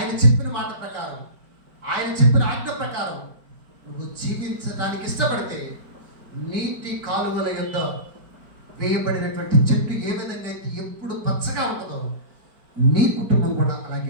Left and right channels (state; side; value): late; left; 4.9 ms